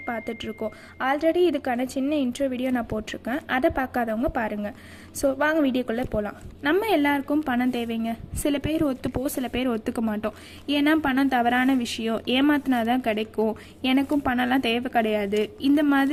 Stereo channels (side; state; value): both; identical; correlation 1.00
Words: பார்த்துட்ருக்கோம். ஆல்ரெடி இதுக்கான சின்ன இன்ட்ரோ வீடியோ நான் போட்டிருக்கேன், அதை பார்க்காதவங்க பாருங்கள். ஸோ வாங்க வீடியோக்குள்ளே போகலாம். நம்ம எல்லாருக்கும் பணம் தேவைங்க. சில பேர் ஒத்துப்போம், சில பேர் ஒத்துக்க மாட்டோம். ஏன்னா பணம் தவறான விஷயம், ஏமாத்தினா தான் கிடைக்கும், எனக்கும் பணம்லாம் தேவை கிடையாது, இந்த